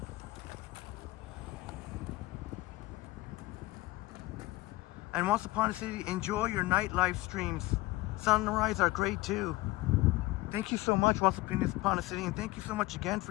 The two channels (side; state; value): right; quieter; 19.8 dB